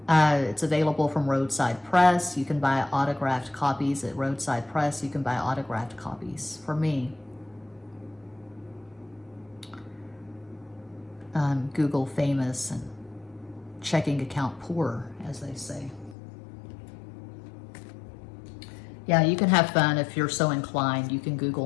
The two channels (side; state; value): right; drops out; at 16.2 s